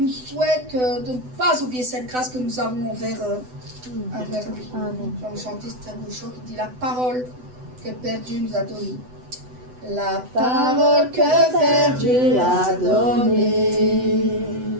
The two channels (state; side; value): late; left; 8.0 ms